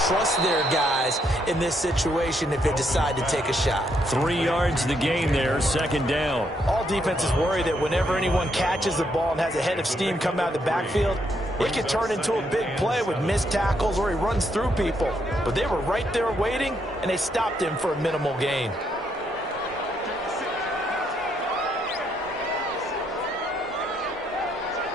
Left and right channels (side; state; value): both; normal; correlation 0.75